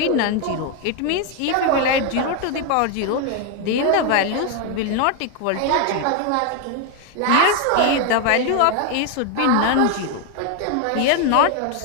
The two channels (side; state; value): both; different; correlation 0.01